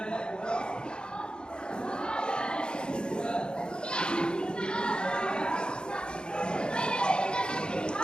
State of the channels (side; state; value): right; late; 0.050 ms